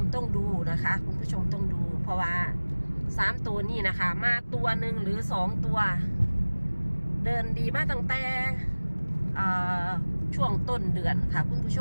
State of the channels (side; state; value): both; inverted; correlation -1.00